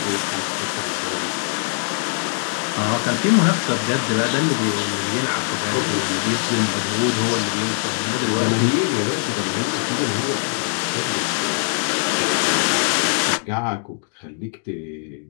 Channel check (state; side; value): silent; right; digital silence